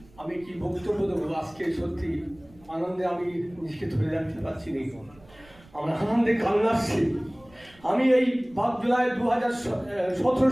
আমি কি বক্তব্য দেবো আজকে, সত্যি আনন্দে আমি নিজেকে ধরে রাখতে পারছি না, আমার আনন্দে কান্না আসছে। আমি এই 5 জুলাই 2017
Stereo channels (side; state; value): right; noise; rumble, 26 dB below the sound